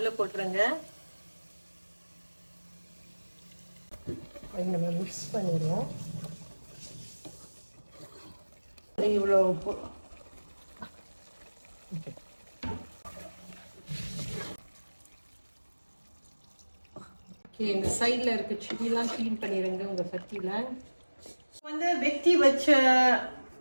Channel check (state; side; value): inverted; both; correlation -1.00